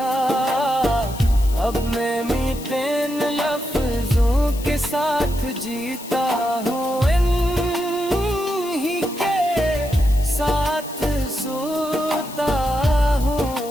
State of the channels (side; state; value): left; noise; hiss, 15 dB below the sound